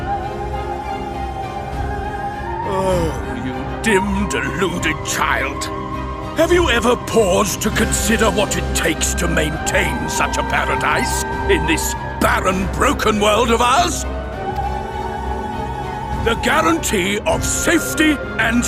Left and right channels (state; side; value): identical; both; correlation 1.00